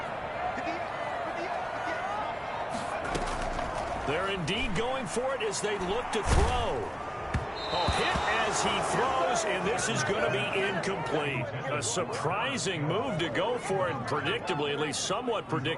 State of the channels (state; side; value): identical; both; correlation 1.00